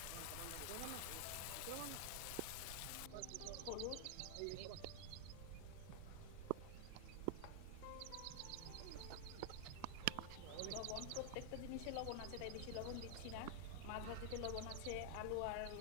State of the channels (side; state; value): both; different; correlation 0.00